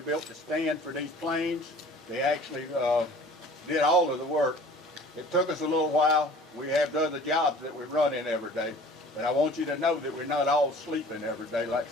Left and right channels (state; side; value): normal; both; correlation 0.47